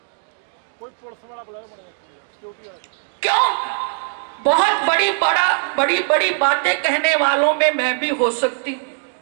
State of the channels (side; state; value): left; silent; 65 dB below the other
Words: क्यों? बहुत बड़ी बड़ी बातें कहने वालों में मैं भी हो सकती हूं,